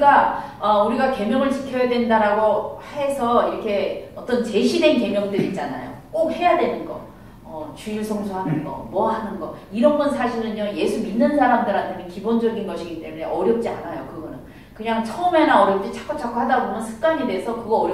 우리가 계명을 지켜야 된다라고 해서 이렇게 어떤 제시된 계명들 있잖아요. 꼭 해야 되는 거. 주일 성수하는 거, 뭐 하는 거 이런 건 사실은요 예수 믿는 사람들한테는 기본적인 것이기 때문에 어렵지 않아요. 그거는 그냥 처음에는 어렵지 자꾸 하다 보면 습관이 돼서 그거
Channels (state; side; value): identical; both; correlation 1.00